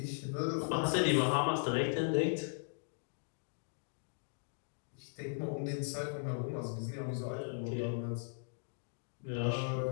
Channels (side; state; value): right; silent; digital silence